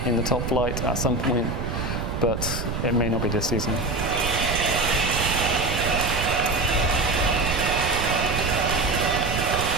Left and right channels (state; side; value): noise; right; rumble, 4 dB below the sound